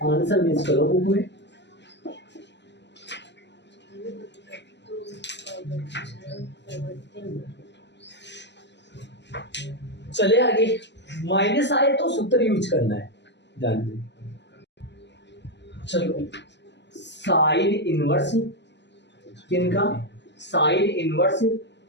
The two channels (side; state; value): right; late; 0.51 ms